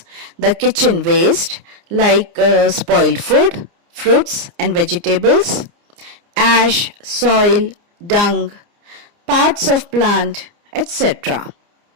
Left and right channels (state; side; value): late; left; 29 ms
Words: the kitchen waste like spoiled food, fruits and vegetables, ash, soil, dung, parts of plant, etc.